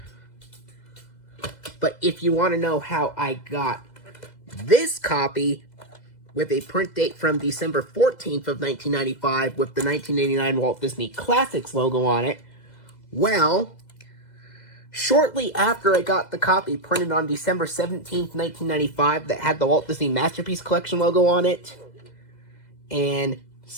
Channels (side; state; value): right; late; 2.0 ms